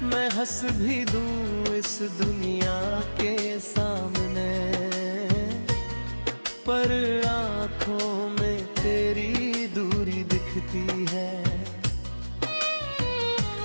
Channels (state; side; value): inverted; both; correlation -1.00